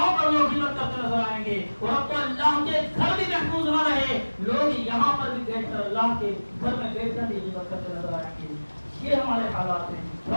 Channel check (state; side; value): inverted; both; correlation -1.00